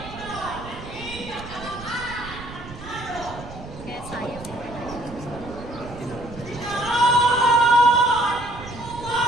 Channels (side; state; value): right; noise; rumble, 14 dB below the sound